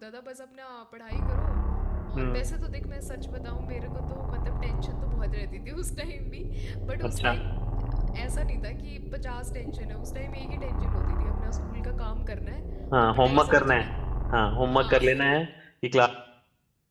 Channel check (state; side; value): identical; both; correlation 1.00